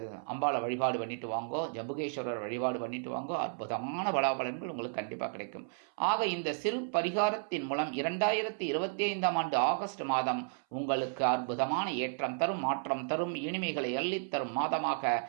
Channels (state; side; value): silent; left; 56 dB below the other